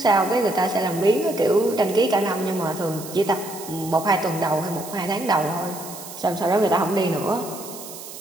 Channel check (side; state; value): right; noise; hiss, 13 dB below the sound